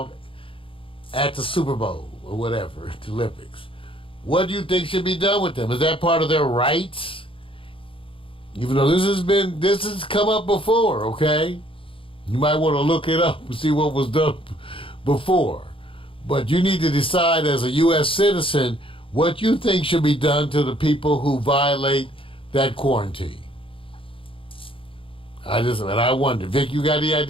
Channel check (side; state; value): right; late; 0.26 ms